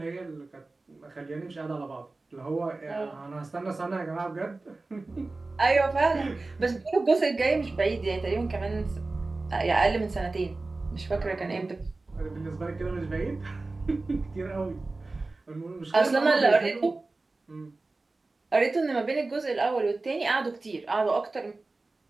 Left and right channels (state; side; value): quieter; left; 3.4 dB